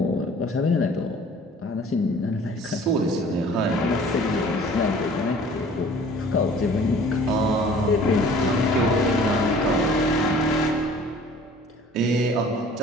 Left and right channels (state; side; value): normal; both; correlation 0.50